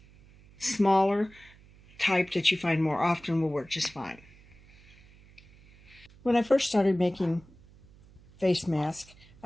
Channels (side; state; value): right; noise; hum, 25 dB below the sound